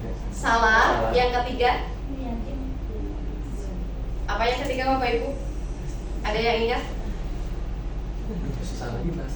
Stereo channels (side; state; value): both; identical; correlation 1.00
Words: salah, yang ketiga apa yang ketiga Bapak Ibu? Ada yang ingat?